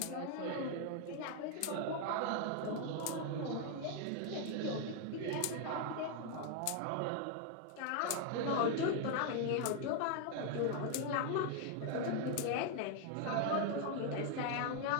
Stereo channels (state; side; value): different; both; correlation 0.00